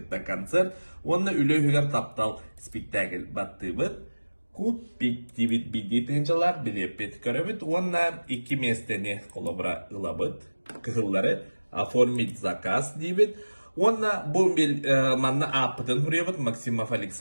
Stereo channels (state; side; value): inverted; both; correlation -1.00